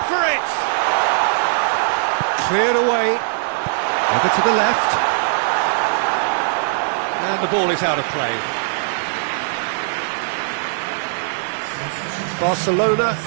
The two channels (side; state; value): left; silent; 57 dB below the other